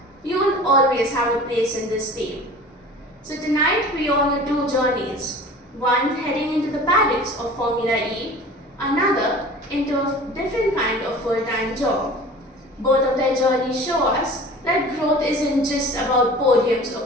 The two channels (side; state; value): both; normal; correlation 0.41